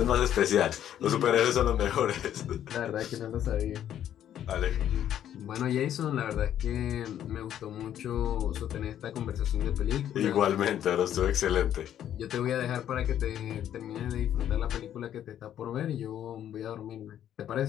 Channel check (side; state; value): right; quieter; 10.7 dB